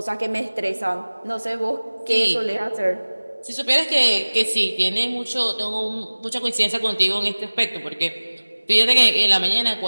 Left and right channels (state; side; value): inverted; both; correlation -1.00